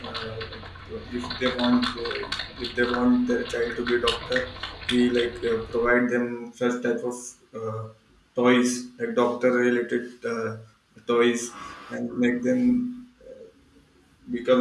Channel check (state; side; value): identical; both; correlation 1.00